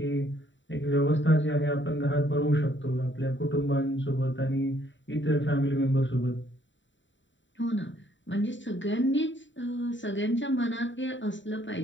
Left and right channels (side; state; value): right; late; 0.54 ms